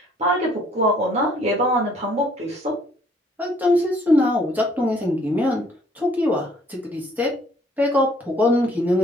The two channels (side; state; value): both; normal; correlation 0.61